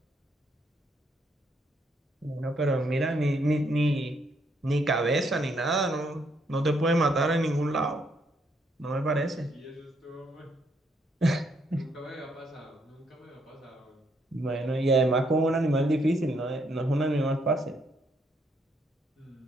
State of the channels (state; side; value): normal; both; correlation 0.73